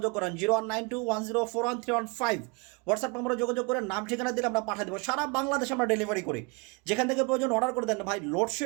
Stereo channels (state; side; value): quieter; left; 29.3 dB